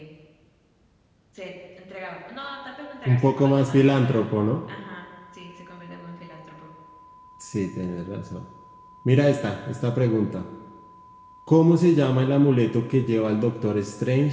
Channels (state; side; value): identical; both; correlation 1.00